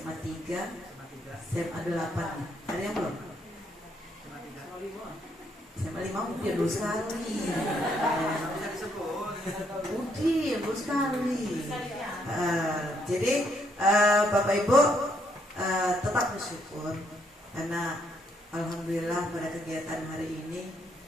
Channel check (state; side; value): normal; both; correlation 0.72